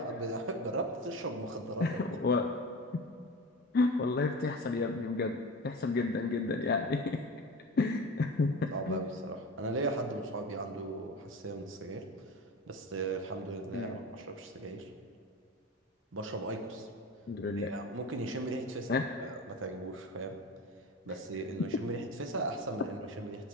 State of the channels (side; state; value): both; normal; correlation 0.31